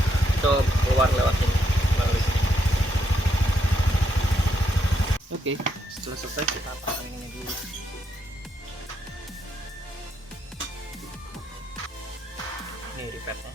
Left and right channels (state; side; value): normal; both; correlation 0.77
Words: itu keluar lewat sini, melalui sini. Oke, setelah selesai kita pasang ini dulu. Ini ripetnya.